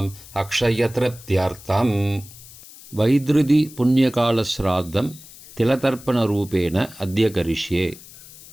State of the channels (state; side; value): noise; left; hiss, 19 dB below the sound